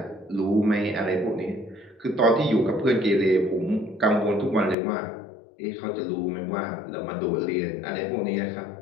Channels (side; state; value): right; drops out; at 4.8 s